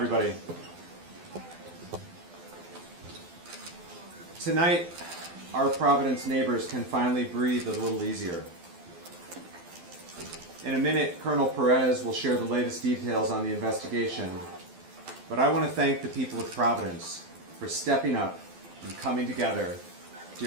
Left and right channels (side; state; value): left; late; 12 ms